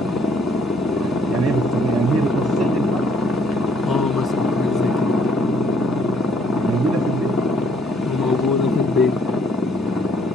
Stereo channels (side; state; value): both; normal; correlation 0.65